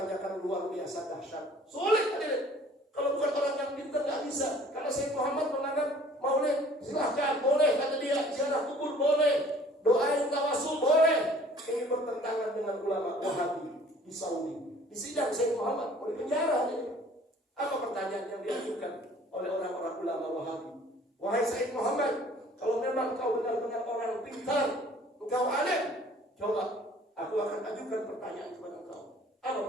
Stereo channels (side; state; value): both; normal; correlation 0.52